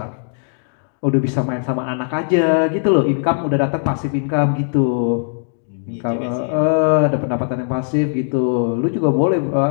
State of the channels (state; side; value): silent; right; digital silence